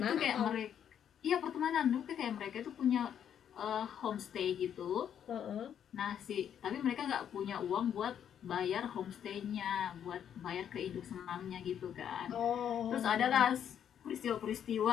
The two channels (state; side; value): quieter; right; 9.1 dB